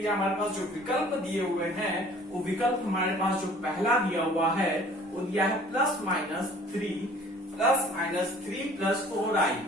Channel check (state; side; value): normal; both; correlation 0.51